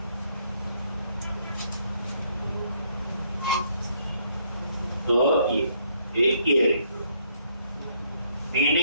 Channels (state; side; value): inverted; both; correlation -0.69